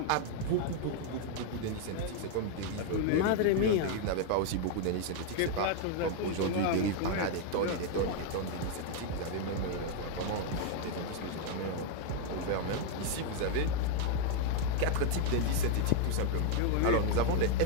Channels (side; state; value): both; different; correlation 0.00